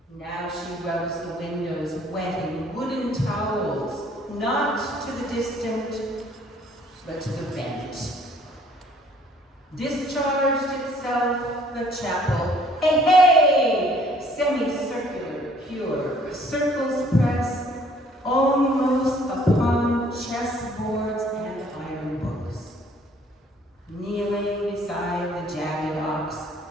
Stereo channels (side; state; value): both; normal; correlation 0.59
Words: Now she rubs the windows wetting wooden towels, not to the distant, but to the bent. Discharged itself the chapel. Hey, hey! Semicircular, pure, circles press almost upon chessboards and iron books. Kneeling beside the jagged ox,